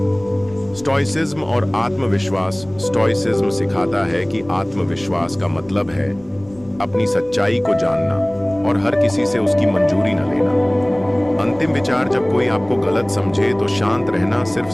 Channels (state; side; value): noise; left; rumble, 23 dB below the sound